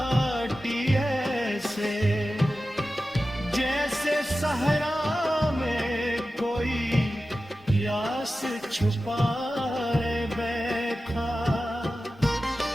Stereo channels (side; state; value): both; normal; correlation 0.94